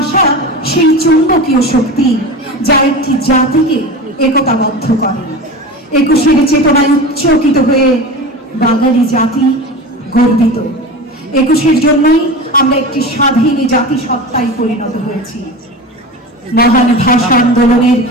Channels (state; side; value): normal; both; correlation 0.30